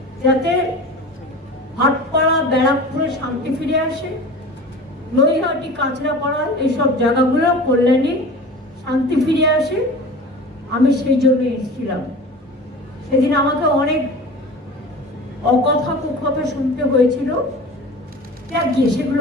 যাতে ভাটপাড়া, ব্যারাকপুরে শান্তি ফিরে আসে, নৈহাটি, কাঁচরাপাড়া, এইসব জায়গাগুলো কল্যাণী শান্তি ফিরে আসে। আমি সেই জন্য এসেছিলাম। সেদিন আমাকে অনেক অকথা কুকথা শুনতে হয়েছিল,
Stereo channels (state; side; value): normal; both; correlation 0.37